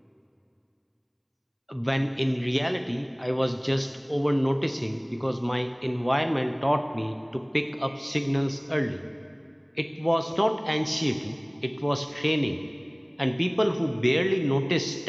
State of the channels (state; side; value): identical; both; correlation 1.00